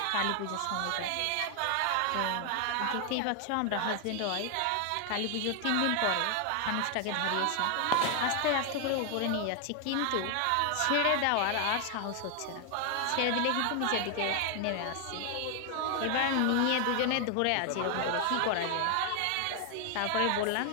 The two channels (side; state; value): both; different; correlation 0.00